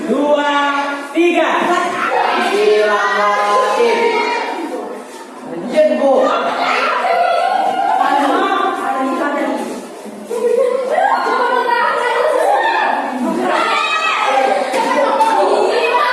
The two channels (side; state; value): both; identical; correlation 1.00